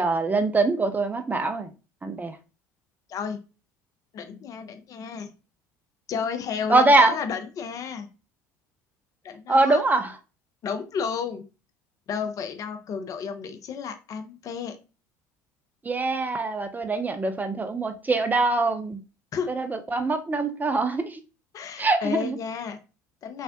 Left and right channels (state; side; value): normal; both; correlation 0.66